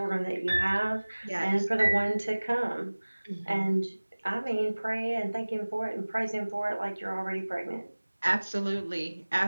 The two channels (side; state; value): both; inverted; correlation -1.00